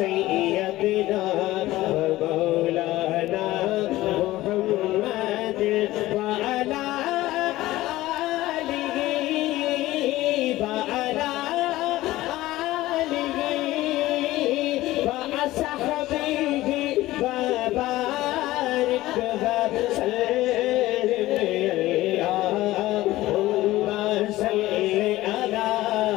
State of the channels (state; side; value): quieter; right; 16.8 dB